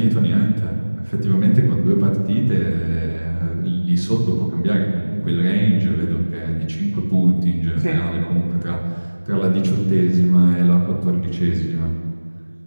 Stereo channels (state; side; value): inverted; both; correlation -1.00